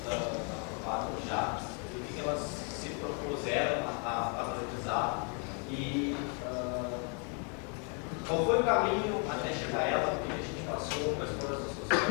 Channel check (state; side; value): quieter; right; 38.0 dB